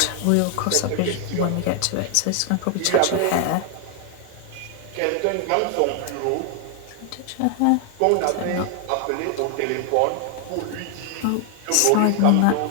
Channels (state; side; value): different; both; correlation 0.00